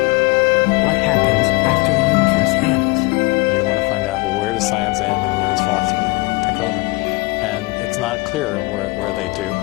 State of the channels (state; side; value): quieter; right; 24.7 dB